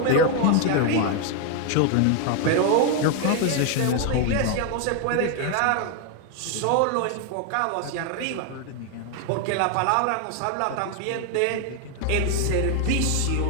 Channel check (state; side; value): different; both; correlation 0.00